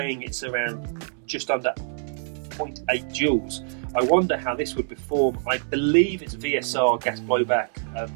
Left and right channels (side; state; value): left; silent; digital silence